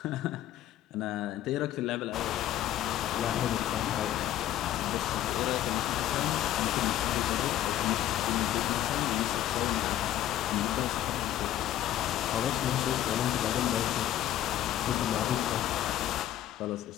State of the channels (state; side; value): quieter; right; 12.5 dB